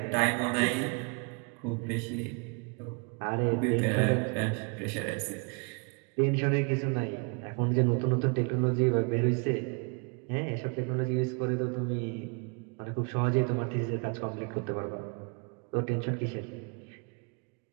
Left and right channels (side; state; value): left; quieter; 34.0 dB